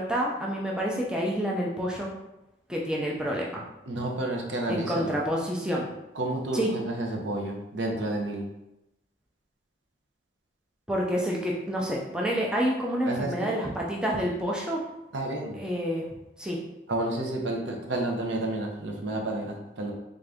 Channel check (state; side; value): normal; both; correlation 0.55